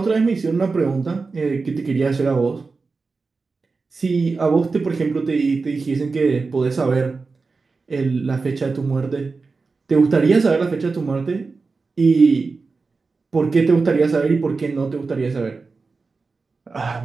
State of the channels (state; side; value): quieter; left; 4.2 dB